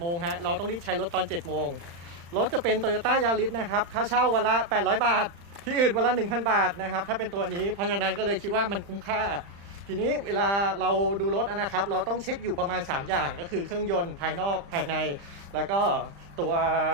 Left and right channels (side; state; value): left; late; 35 ms